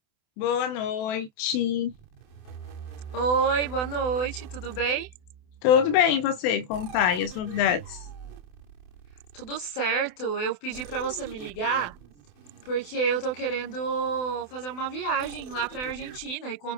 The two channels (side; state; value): right; late; 28 ms